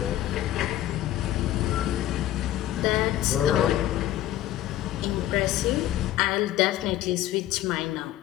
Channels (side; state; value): right; quieter; 13.5 dB